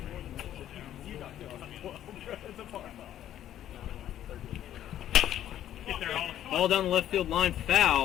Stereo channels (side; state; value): right; quieter; 11.6 dB